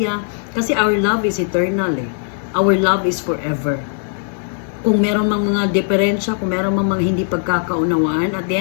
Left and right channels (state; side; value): silent; right; 67 dB below the other